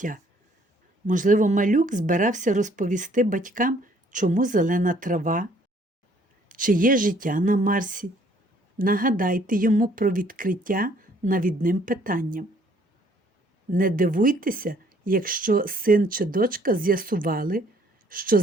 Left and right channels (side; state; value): both; normal; correlation 0.61